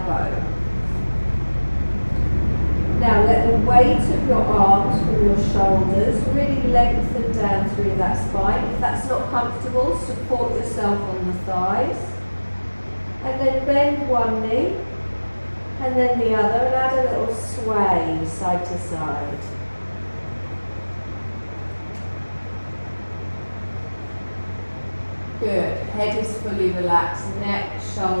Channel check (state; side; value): inverted; both; correlation -1.00